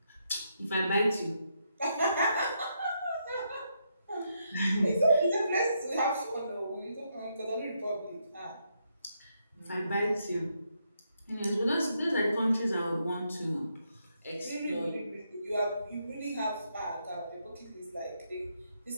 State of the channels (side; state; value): both; inverted; correlation -0.79